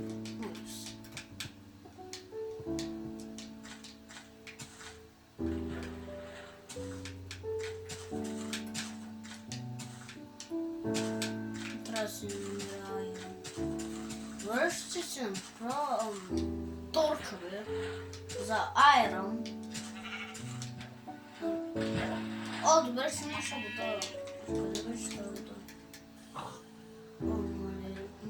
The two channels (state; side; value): identical; both; correlation 1.00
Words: Връща се направо торчове за айрон. Добре, ще наша вода. Къде беше тази вода?